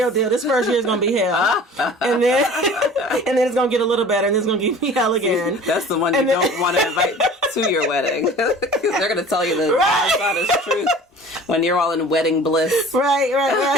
deal. This first year is gonna be hell, and then it's gonna get a little better, and then it's gonna give me hell again. That's the one you don't want to invite to your wedding. They're going to tell you the honest truth when you're all in wedding bliss.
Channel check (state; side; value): normal; both; correlation 0.44